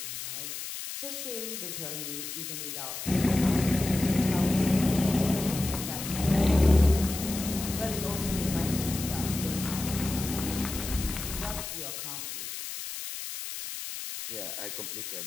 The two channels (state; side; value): noise; left; hiss, 7 dB below the sound